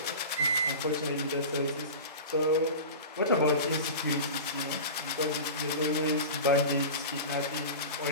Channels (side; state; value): both; inverted; correlation -0.30